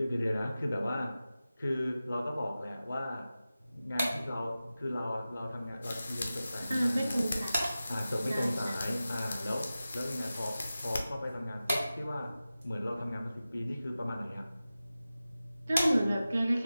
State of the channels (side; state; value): both; inverted; correlation -0.95